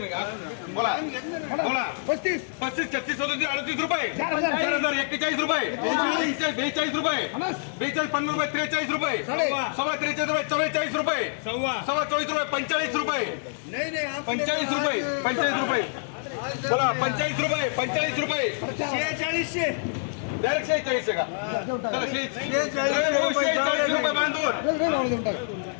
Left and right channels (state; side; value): silent; right; digital silence